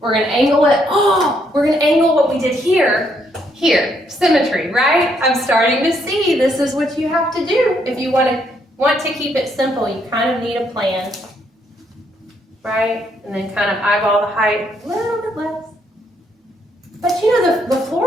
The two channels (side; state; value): both; normal; correlation 0.73